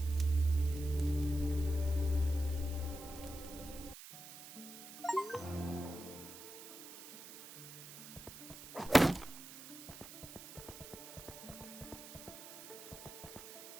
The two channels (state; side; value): noise; right; hiss, 14 dB below the sound